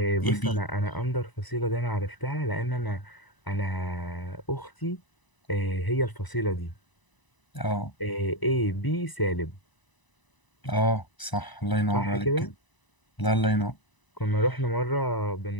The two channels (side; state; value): right; late; 1.0 ms